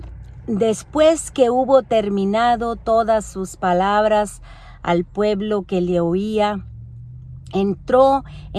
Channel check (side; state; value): both; identical; correlation 1.00